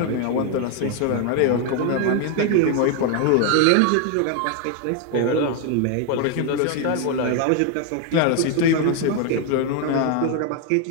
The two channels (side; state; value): both; different; correlation 0.00